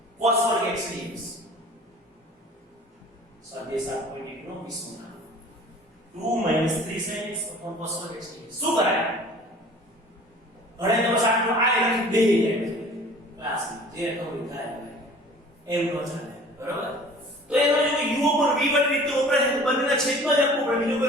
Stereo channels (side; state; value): both; normal; correlation 0.47